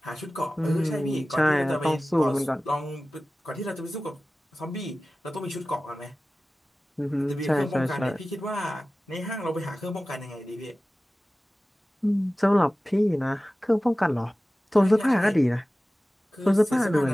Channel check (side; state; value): both; normal; correlation 0.96